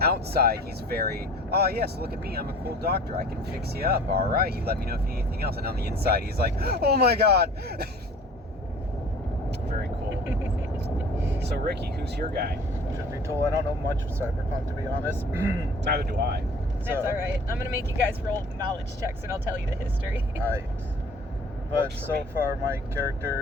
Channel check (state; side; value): normal; both; correlation 0.47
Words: outside, he's very, oh yes, look at me, I'm a cool doctor, I can fix you up, all right, you let me know if you need anything else. And on the inside, he's like, oh my god. Very cool. So Ricky, who's your guy? Should be told, I don't know much of Cyberpunk, to be honest. Neither do I. That's alright. I'm gonna make you guys roll knowledge checks and I'll tell you the history. Alright. But Works for so me. far, my